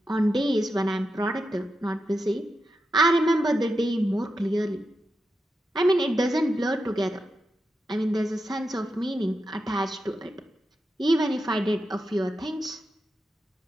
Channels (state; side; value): normal; both; correlation 0.88